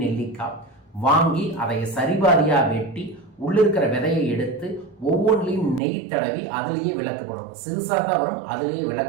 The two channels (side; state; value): left; drops out; at 5.8 s